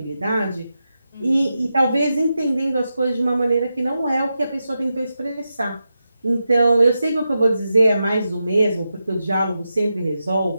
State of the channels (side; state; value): both; inverted; correlation -0.89